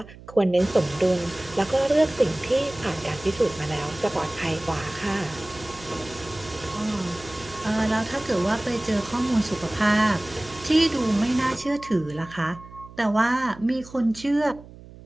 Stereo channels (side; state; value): right; noise; hum, 19 dB below the sound